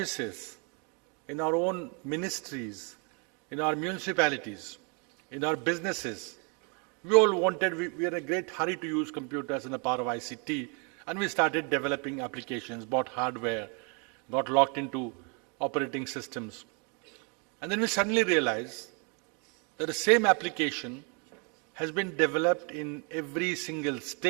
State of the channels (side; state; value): left; quieter; 35.5 dB